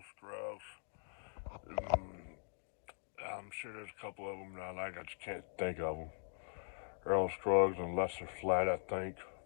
Scruggs. I'm sure there's a couple of them that I like. I just can't think of them. Earl Scruggs and Lester Flatt, I think.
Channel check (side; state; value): right; silent; digital silence